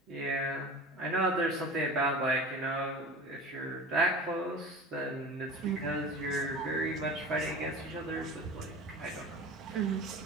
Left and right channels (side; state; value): both; normal; correlation 0.34